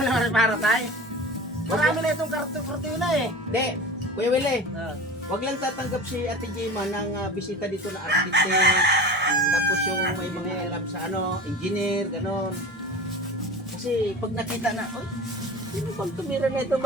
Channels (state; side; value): noise; left; hum, 29 dB below the sound